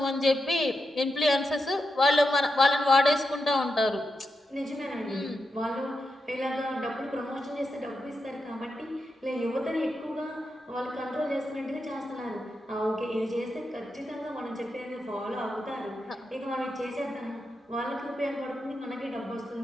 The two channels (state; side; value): normal; both; correlation 0.87